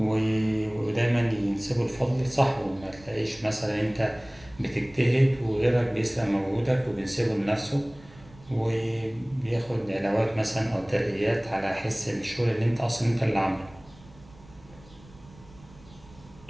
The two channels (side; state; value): right; noise; rumble, 23 dB below the sound